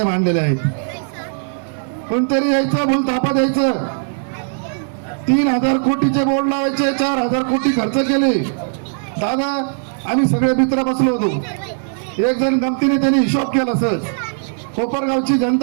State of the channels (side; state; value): left; silent; 67 dB below the other